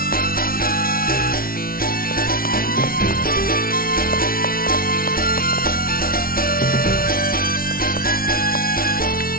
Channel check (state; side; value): late; right; 0.43 ms